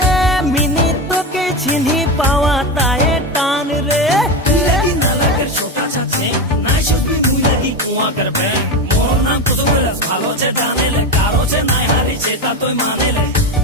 मिनी तोके चिन्ही पावा ताए टान रे लगी ना लगर छोटा सा छे ना शुभी मुई लगी कुआ कर बे मोर नाम तो बोलस भालो छे जाने ले कारो छे ना हारी छे ता तोय माने ले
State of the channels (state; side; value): normal; both; correlation 0.18